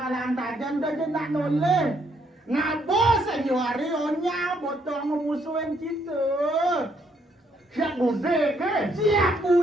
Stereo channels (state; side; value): normal; both; correlation 0.71